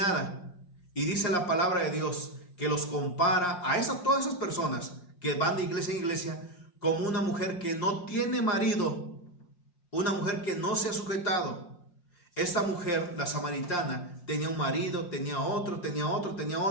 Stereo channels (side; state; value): right; late; 5.6 ms